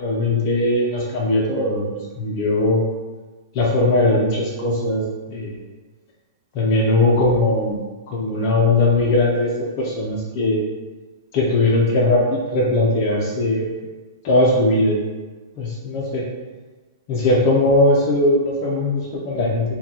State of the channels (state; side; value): normal; both; correlation -0.19